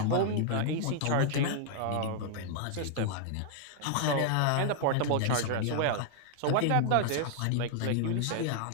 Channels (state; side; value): different; both; correlation -0.01